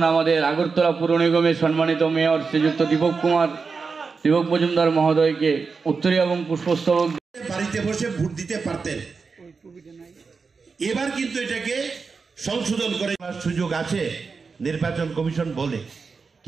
আগরতলা পুর নিগমের সম্মানিত মেয়র শ্রীযুক্ত দীপক মজুমদার মহোদয়কে উত্তরীয় এবং পুষ্পস্তবক বাড়িতে বসে ভোট দিতে পারতেন। এবার কিন্তু এটাকে সংশোধন করে সুযোগ আছে নির্বাচন কমিশন বলে,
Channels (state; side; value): quieter; left; 4.8 dB